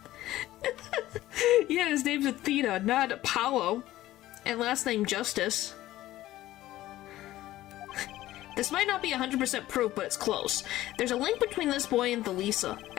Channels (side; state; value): right; quieter; 15.3 dB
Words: Yeah, his name's Athena, not Apollo. And last name Justice. This might not be 100% proof, but it's close. There's a link between this boy and Thalisa.